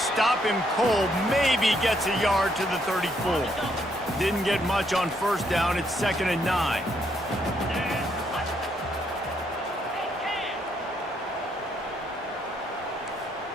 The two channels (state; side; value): normal; both; correlation 0.73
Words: him cold, maybe gets a yard to the 34. Didn't get much on first down. It's 2nd and 9.